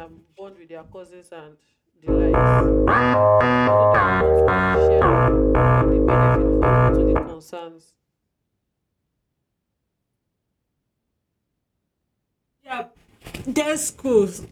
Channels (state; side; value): identical; both; correlation 1.00